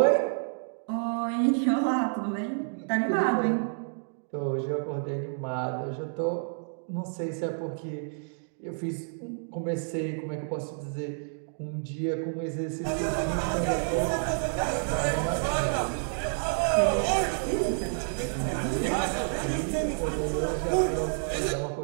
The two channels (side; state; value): left; silent; digital silence